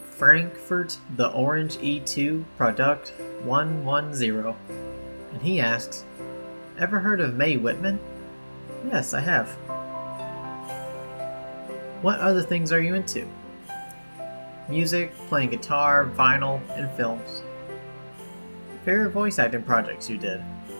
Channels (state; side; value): inverted; both; correlation -1.00